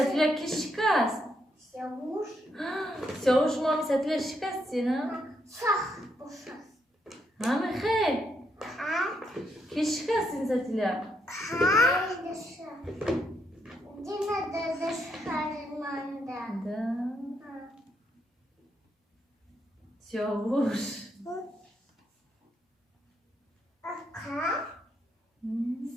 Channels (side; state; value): both; normal; correlation 0.78